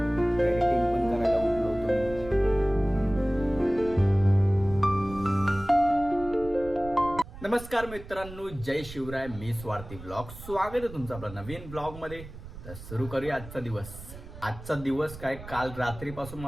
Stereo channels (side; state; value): right; noise; rumble, 14 dB below the sound